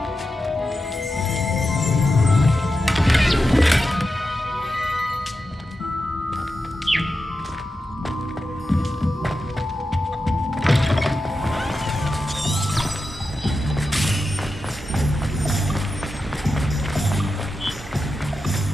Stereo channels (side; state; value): both; normal; correlation 0.90